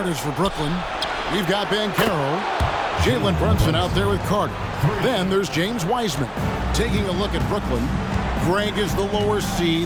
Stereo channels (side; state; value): both; identical; correlation 1.00